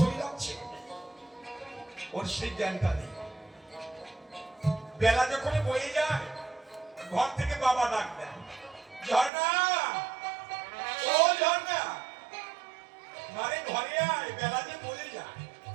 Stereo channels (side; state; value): left; drops out; at 9.3 s